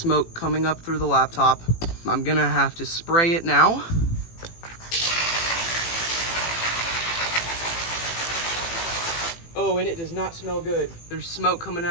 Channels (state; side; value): late; right; 18 ms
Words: coming up through the laptop. I'm gonna have to spray it now. Oh, and it does not smell good. There's smoke coming